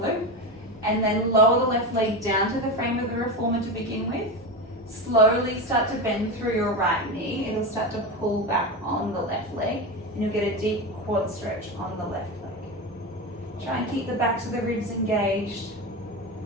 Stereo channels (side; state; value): both; normal; correlation 0.19